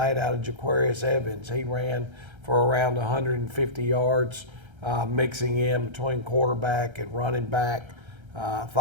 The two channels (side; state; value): left; late; 1.3 ms